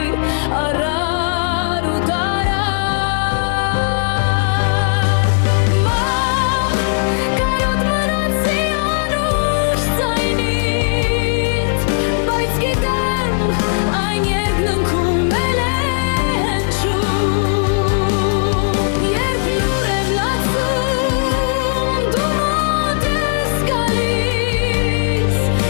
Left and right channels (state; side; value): silent; right; digital silence